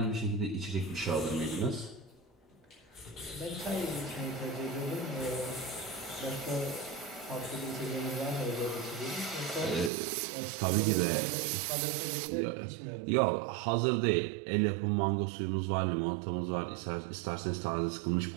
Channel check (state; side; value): drops out; left; at 9.9 s